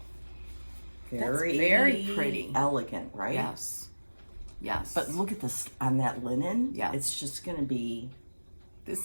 Very, very pretty. Elegant, right? Yes. Yes. But look at this on that linen. Yeah. It's just going to be...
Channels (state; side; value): inverted; both; correlation -1.00